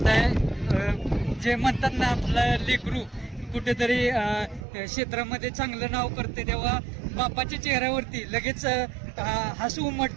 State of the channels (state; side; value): drops out; left; at 4.7 s